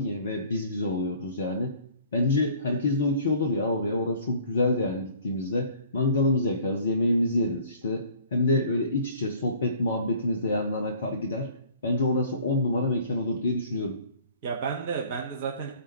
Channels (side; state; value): both; inverted; correlation -0.52